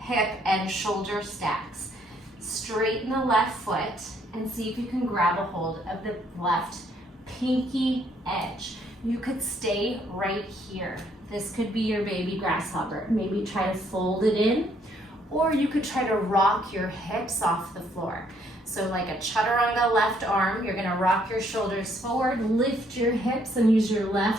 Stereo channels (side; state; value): both; normal; correlation 0.68